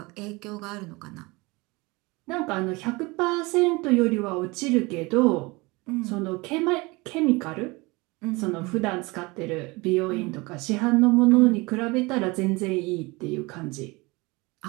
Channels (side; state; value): left; quieter; 24.4 dB